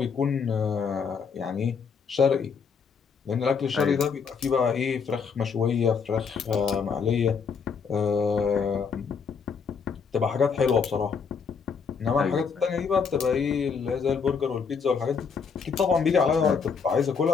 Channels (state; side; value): quieter; right; 5.9 dB